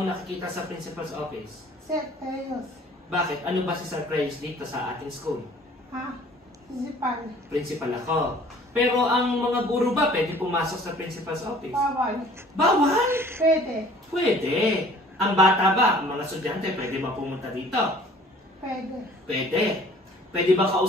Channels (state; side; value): normal; both; correlation 0.52